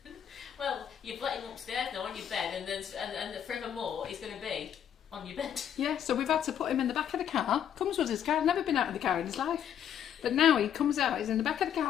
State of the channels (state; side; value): quieter; right; 9.2 dB